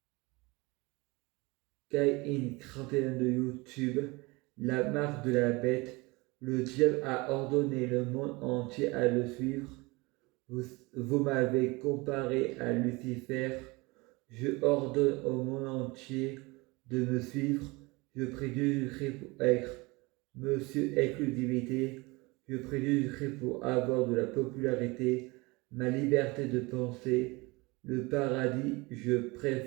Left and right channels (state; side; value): quieter; left; 24.7 dB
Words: Kai-In 31 de YouTube, la marque de la bête. Le diable a ordonné le monde entier à le suivre. Vous m'avez comparé à Lucifer. Je ordonne au monde entier de me suivre. Je prie Jésus-Christ pour être Monsieur Exclusivité. Je prie Jésus-Christ pour avoir de la popularité, ma liberté de penser, le paradis, je